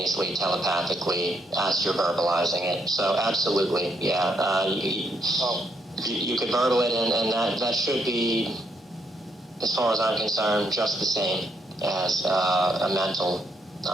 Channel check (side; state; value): both; normal; correlation 0.75